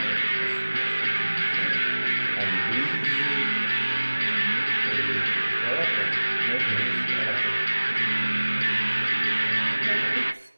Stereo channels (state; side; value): inverted; both; correlation -1.00